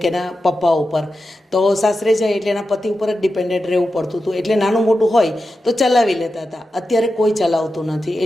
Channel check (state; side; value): normal; both; correlation 0.90